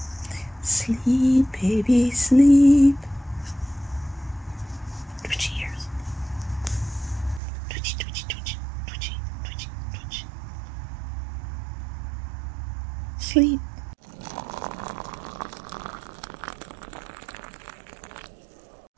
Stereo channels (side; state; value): left; drops out; at 7.4 s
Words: Sleep, baby, sleep. Twitchy ears. Twitchy, twitchy, twitchy, twitchy, twitchy, twitchy. Sleep.